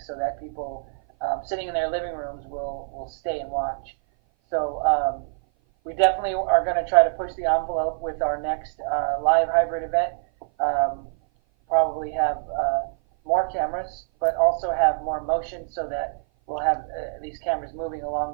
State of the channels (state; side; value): silent; left; 56 dB below the other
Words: so that people sitting in their living rooms will stay and watch. So we definitely are going to try to push the envelope with our next live hybrid event. Probably have more cameras, but also have more motion so that we'll have these cameras moving along